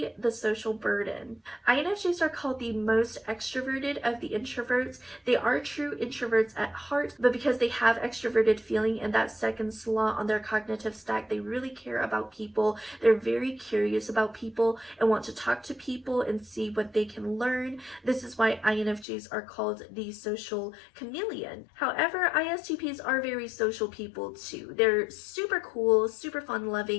the social burden. INFJs are called the most extroverted of the introverts. They are true introverts at heart, but because they have extroverted feeling and that second slot on their cognitive stack, they really care about people. They're very curious about people and want to talk to people and see what they can learn. This is why INFJs are called the social chameleon. However, ISTPs are very social people too. They're super cool, super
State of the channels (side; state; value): right; drops out; at 19.1 s